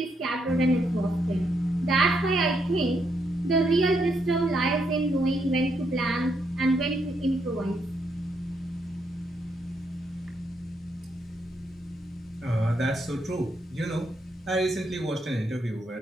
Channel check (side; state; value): both; normal; correlation 0.77